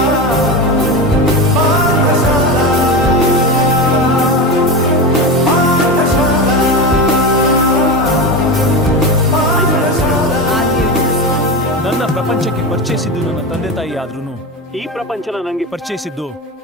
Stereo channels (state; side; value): normal; both; correlation 0.21